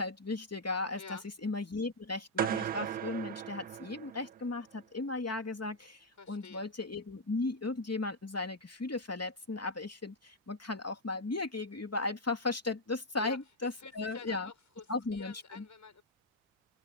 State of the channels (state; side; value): normal; both; correlation -0.01